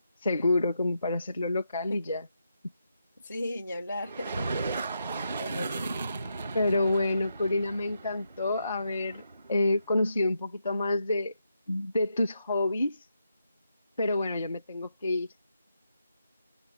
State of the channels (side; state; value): both; inverted; correlation -0.82